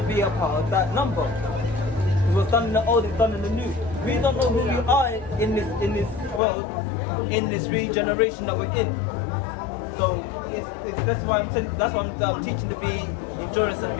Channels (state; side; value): drops out; right; at 6.4 s